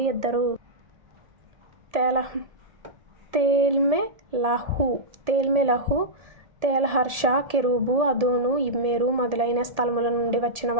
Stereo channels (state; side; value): late; left; 1.7 ms